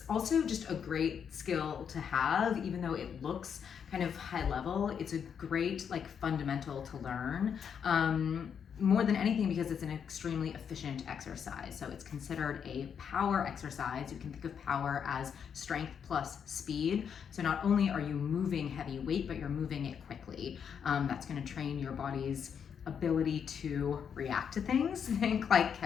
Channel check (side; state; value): right; quieter; 7.5 dB